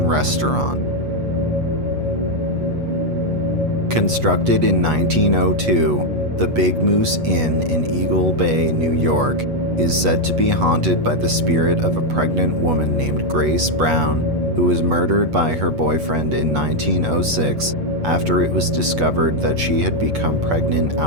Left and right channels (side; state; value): left; late; 8.2 ms